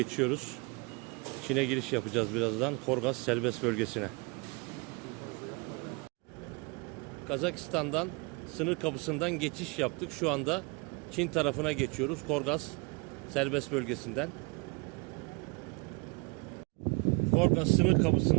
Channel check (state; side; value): quieter; left; 30.0 dB